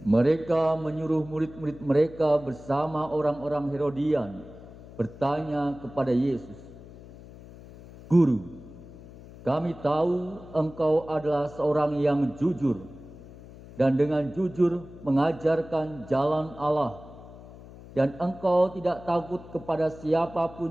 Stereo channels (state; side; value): noise; left; hum, 18 dB below the sound